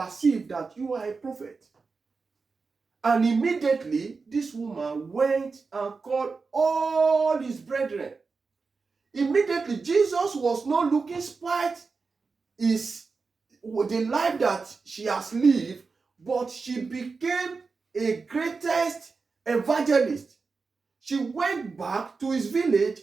that you are a prophet. And immediately, this woman went and called all his brethren. Immediately, Jesus was not looking spite the life that she has lived, but she became a greatest evangelist. She went back to his village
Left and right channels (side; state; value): left; quieter; 4.5 dB